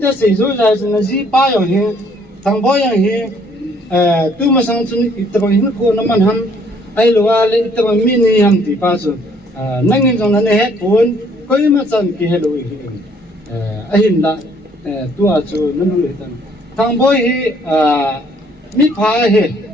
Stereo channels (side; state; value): both; normal; correlation 0.63